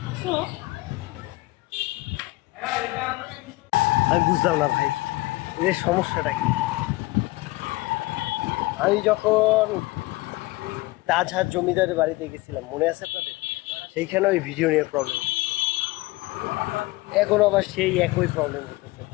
আমি বুঝলাম না ভাই, এর সমস্যাটা কি। আমি যখন তাজহাট জমিদারের বাড়িতে গেছিলাম, মনে আছে আপনাদের? সেইখানে ওই ভিডিও নিয়ে প্রবলেম, এখন আবার সেই একই প্রবলেম করতেছে।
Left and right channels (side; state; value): right; quieter; 21.0 dB